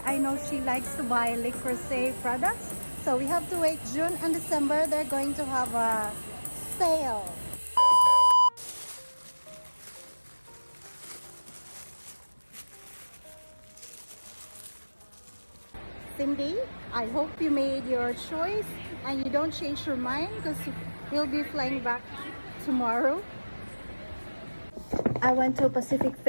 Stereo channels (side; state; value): both; inverted; correlation -1.00